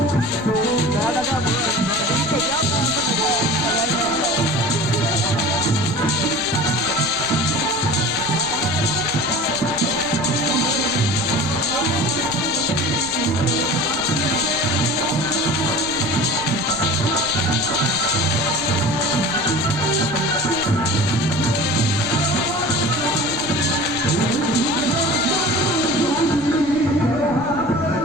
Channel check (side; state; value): right; noise; rumble, 16 dB below the sound